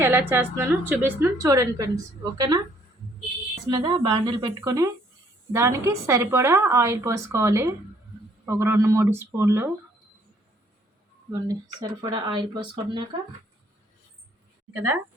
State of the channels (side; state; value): both; normal; correlation 0.64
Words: ఎలా చేస్తున్నానో చూపిస్తున్నాను. చూడండి ఫ్రెండ్స్, ఓకేనా. మీద బాండిల్ పెట్టుకొని దానికి సరిపడా ఆయిల్ పోసుకోవాలి. ఒక 2-3 స్పూన్లు ఇవ్వండి. సరిపడా ఆయిల్ పోసుకున్నాక కదా